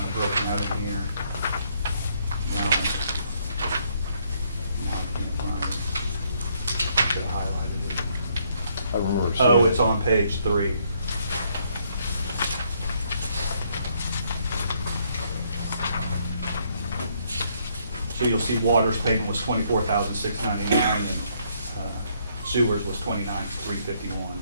of broken out in here. Now I can't find it. Should have highlighted it. I remember Oh, seeing it's it. on page 3. So you'll see water's payment was $24,699 and sewers was $29,351.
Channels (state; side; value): inverted; both; correlation -0.70